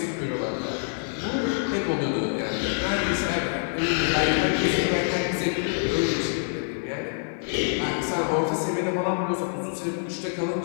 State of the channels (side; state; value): right; silent; digital silence